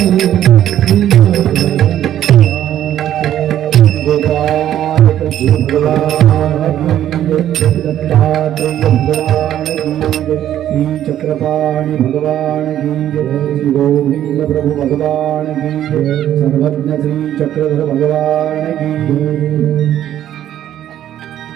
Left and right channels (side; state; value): left; quieter; 11.5 dB